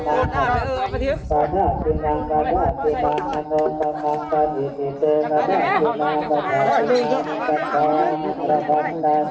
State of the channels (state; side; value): identical; both; correlation 1.00